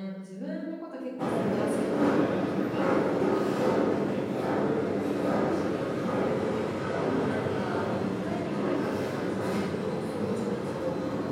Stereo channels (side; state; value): both; identical; correlation 1.00